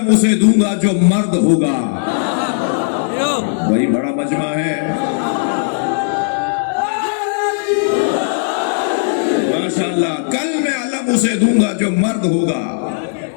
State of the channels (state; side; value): silent; right; digital silence